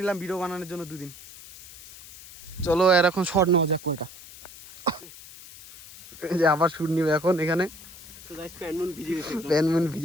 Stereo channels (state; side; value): noise; left; hiss, 17 dB below the sound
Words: নিলাম ভিডিও বানানোর জন্য 2 দিন। চলো এর এখন শর্ট নেওয়া যাক কয়টা। এই যে আবার শুট নিবে এখন এখানে। তো গাইস প্যানমুন ভিজে গেছে, প্যানমুন